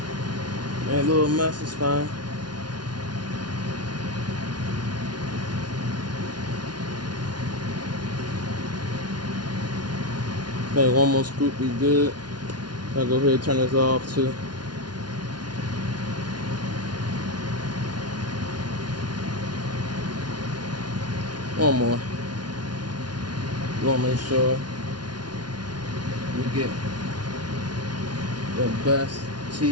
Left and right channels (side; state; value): left; late; 0.70 ms